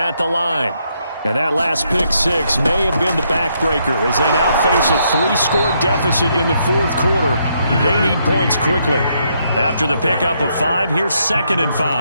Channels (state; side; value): inverted; both; correlation -0.75